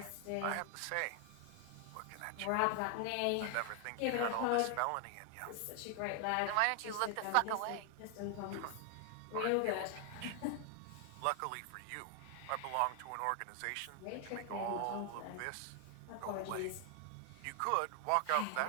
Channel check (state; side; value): different; both; correlation 0.00